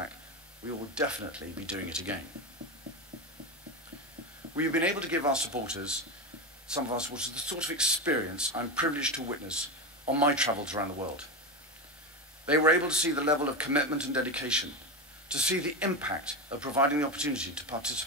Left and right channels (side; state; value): both; normal; correlation 0.16